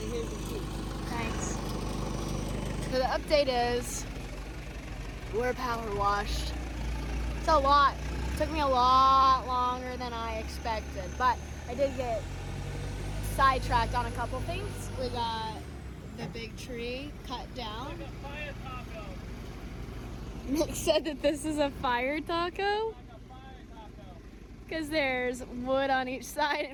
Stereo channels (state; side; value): identical; both; correlation 1.00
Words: here's the sheet. Thanks. So the update is we're power washed. It's a lot. It took me a lot longer than I expected, but I did get sidetracked on a couple things. We got the big tree cut down. Like a fire taco. Nick said that this is a fire taco Like a fire taco. because there's wood on each side